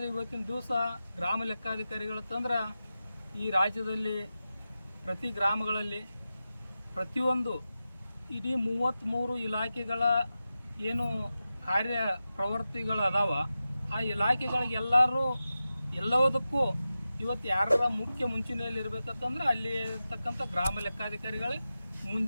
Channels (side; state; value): both; inverted; correlation -0.93